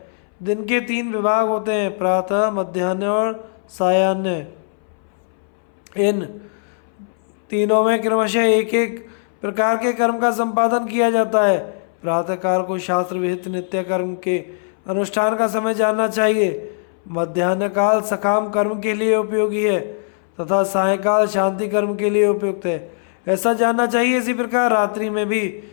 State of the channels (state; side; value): silent; right; 62 dB below the other